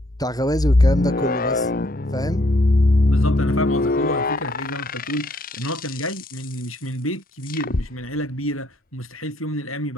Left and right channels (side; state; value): both; normal; correlation 0.69